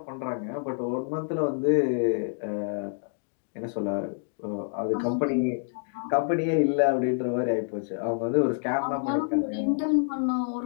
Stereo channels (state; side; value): silent; right; digital silence